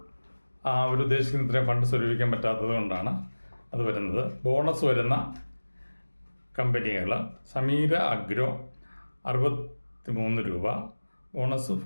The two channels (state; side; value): inverted; both; correlation -1.00